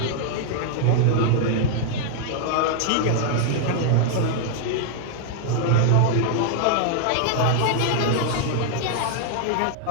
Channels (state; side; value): different; both; correlation -0.01